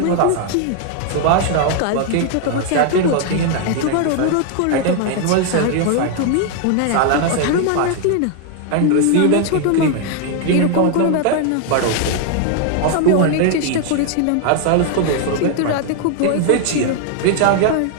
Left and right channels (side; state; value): both; different; correlation 0.00